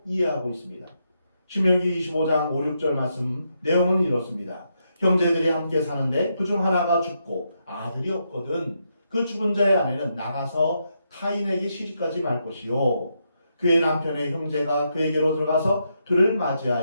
이해하고 있습니다. 신명기 25장 5, 6절 말씀 내용은 이렇습니다. 형제들이 함께 사는데 그중 하나가 죽고 아들이 없거든 그 죽은 자의 아내는 나가서 타인에게 시집가지 말 것이요 그의 남편의 형제가 그에게로 들어가서 그를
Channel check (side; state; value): both; inverted; correlation -0.81